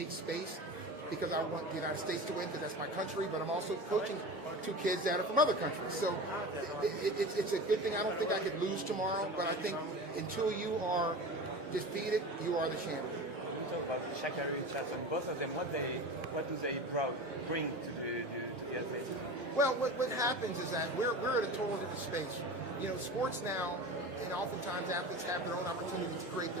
space because I want the United States to win because that's my country, but I'm also coaching two kids that are from other countries. So it's a good thing. I don't think I could lose tomorrow, but I think until you are defeated, you are the champion. We talk about Sha'Carri Richardson. Both of them, what do they bring to the athletes? Well, what happens is that we're at a total different space. You know, sports now, and oftentimes athletes have their own opportunity to create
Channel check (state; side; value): normal; both; correlation 0.31